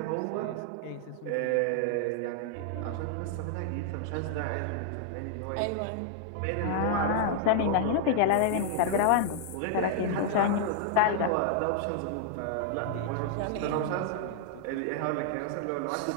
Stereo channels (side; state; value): both; different; correlation -0.01